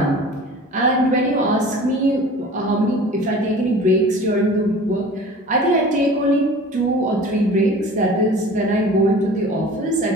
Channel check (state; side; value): normal; both; correlation 0.42